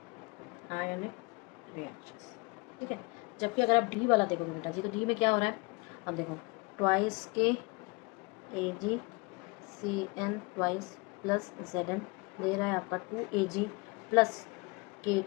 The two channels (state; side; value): quieter; right; 27.6 dB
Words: ionic reactions, ठीक है। जबकि अगर आप डी वाला देखोगे बेटा जी, तो डी में क्या हो रहा है, अब देखो ट्वाइस के AgCN ट्वाइस प्लस Zn दे रहा है आपका 2Ag प्लस